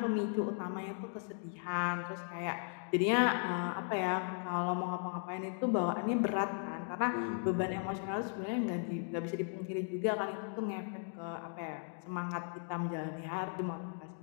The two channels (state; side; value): silent; right; 53 dB below the other